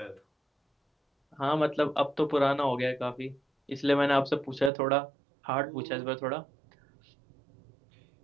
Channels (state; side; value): drops out; left; at 4.7 s